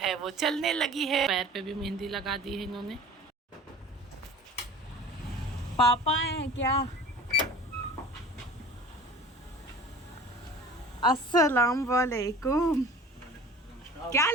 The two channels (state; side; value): normal; both; correlation 0.42